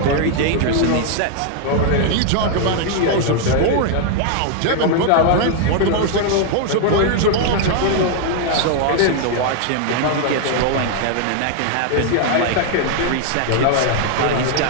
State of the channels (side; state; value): both; different; correlation 0.00